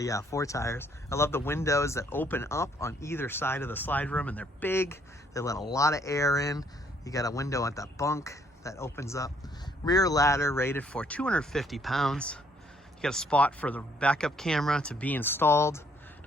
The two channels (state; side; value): normal; both; correlation 0.67